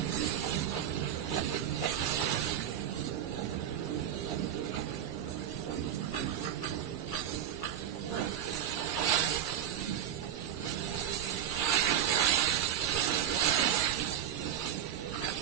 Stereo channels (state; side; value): quieter; left; 10.0 dB